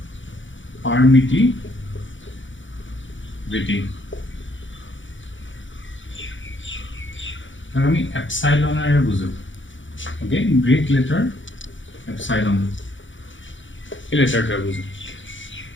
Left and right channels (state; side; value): late; right; 0.56 ms